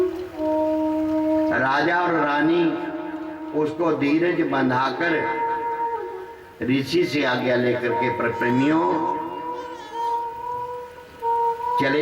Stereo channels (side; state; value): both; identical; correlation 1.00